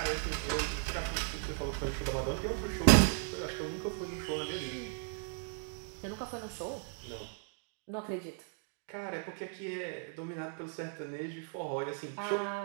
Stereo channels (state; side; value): silent; left; 54 dB below the other